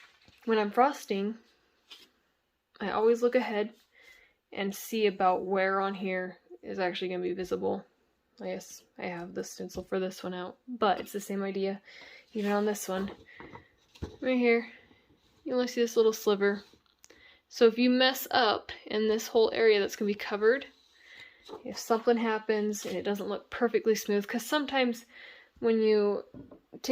when I'm frosting, I always look ahead and see about where on here is actually going to be visible. I guess I have the stencil for this one out, but it's the same idea. Even on this one, right here, you only see this little sliver. So if you mess up in this whole area that's going to be covered, if something happens and it doesn't look perfectly smooth, because sometimes when you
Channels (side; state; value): both; identical; correlation 1.00